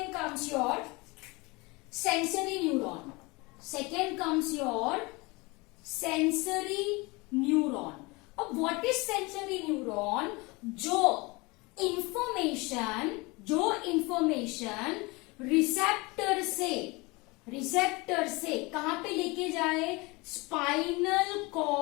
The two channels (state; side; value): quieter; right; 25.3 dB